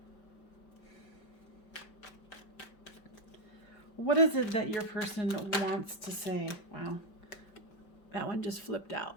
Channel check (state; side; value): late; right; 5.3 ms